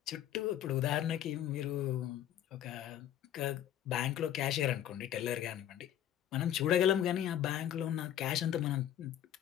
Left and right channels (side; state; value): right; quieter; 11.2 dB